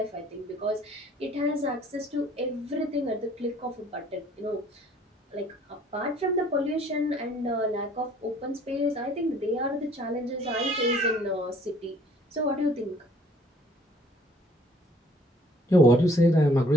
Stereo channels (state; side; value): normal; both; correlation 0.58